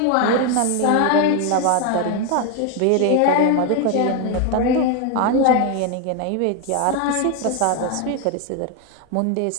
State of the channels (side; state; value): both; different; correlation 0.01